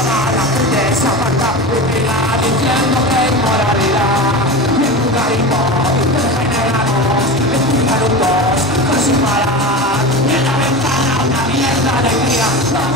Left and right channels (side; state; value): both; normal; correlation 0.26